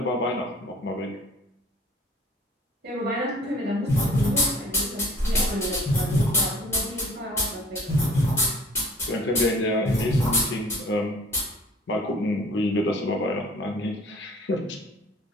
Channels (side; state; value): both; normal; correlation 0.51